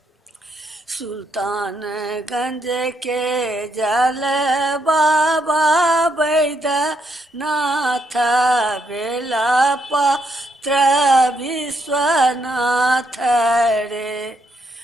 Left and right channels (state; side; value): normal; both; correlation 0.76